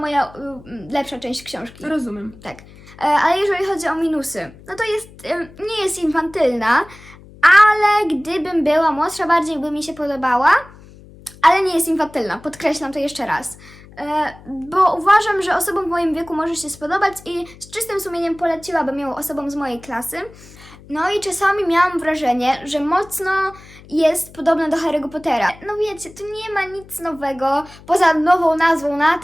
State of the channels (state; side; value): noise; left; hum, 21 dB below the sound